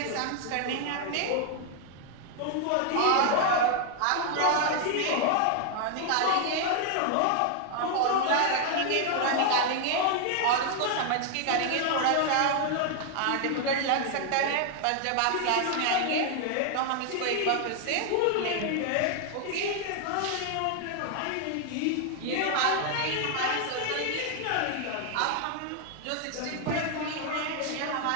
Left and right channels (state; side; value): different; both; correlation 0.00